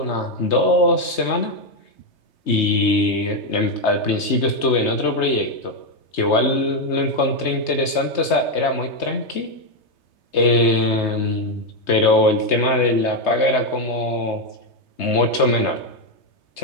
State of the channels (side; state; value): right; late; 3.3 ms